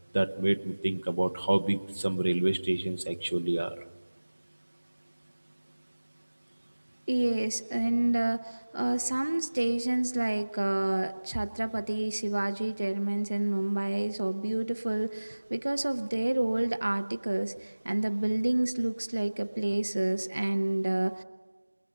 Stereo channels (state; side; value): inverted; both; correlation -1.00